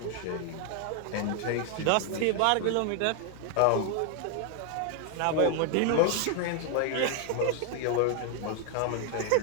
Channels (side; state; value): both; different; correlation 0.00